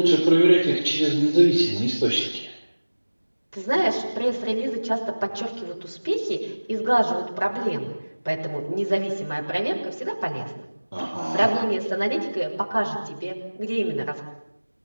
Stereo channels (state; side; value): inverted; both; correlation -1.00